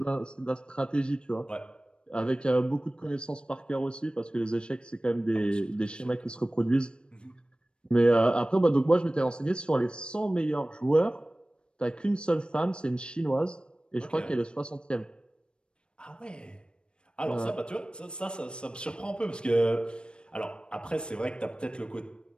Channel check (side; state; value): right; late; 0.054 ms